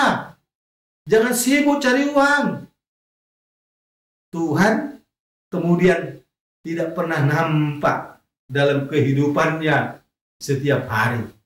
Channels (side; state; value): both; identical; correlation 1.00